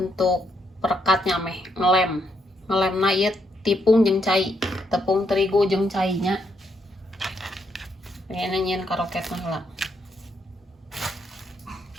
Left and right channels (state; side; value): normal; both; correlation 0.76